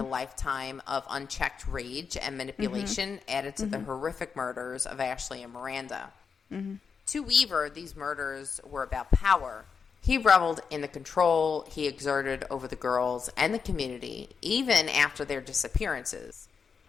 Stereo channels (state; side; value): quieter; right; 5.9 dB